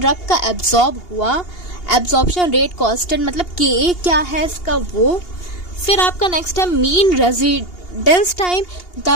का एब्जॉर्ब हुआ। एब्जॉर्प्शन रेट कांस्टेंट मतलब KA क्या है इसका, वो। फिर आपका नेक्स्ट है मीन रेजिडेंस टाइम,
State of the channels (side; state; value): right; late; 2.8 ms